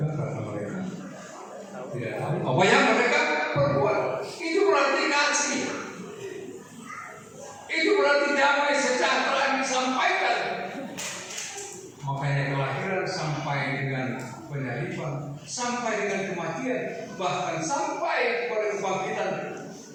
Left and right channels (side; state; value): both; identical; correlation 1.00